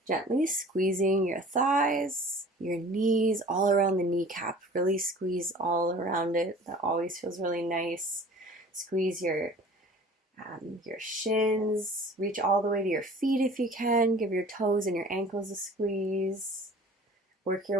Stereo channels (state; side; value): normal; both; correlation 0.45